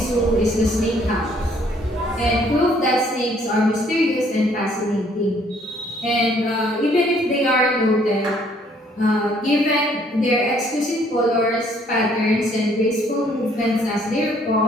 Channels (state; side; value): normal; both; correlation 0.63